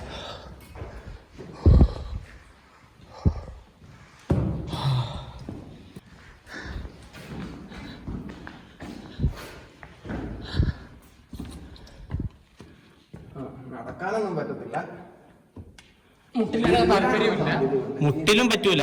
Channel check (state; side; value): identical; both; correlation 1.00